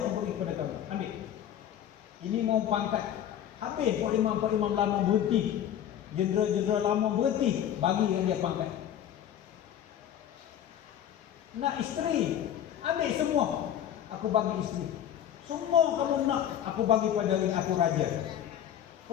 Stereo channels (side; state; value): right; quieter; 10.3 dB